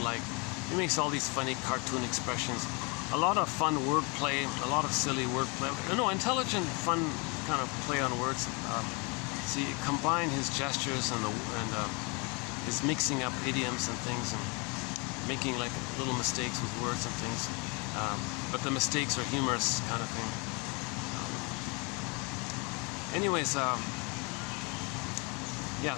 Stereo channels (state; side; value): quieter; right; 30.8 dB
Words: He makes all these funny cartoon expressions. A lot of fun wordplay, a lot of silly wordplay. No, intelligent, fun kind of play on words. So you combine his gestures and his mixing up idioms and things, and making like little mistakes with words and things. But the mistakes are humorous kind of thing. Anyways, yeah.